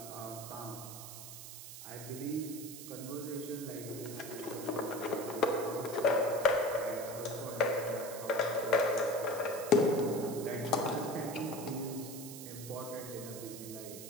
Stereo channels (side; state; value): right; noise; hiss, 11 dB below the sound